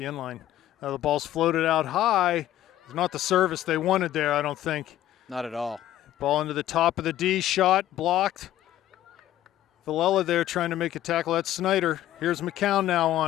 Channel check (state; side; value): quieter; right; 13.1 dB